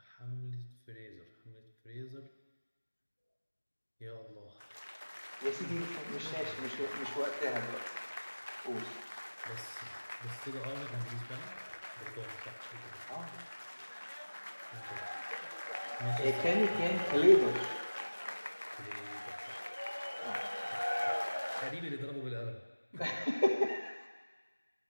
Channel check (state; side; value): inverted; both; correlation -1.00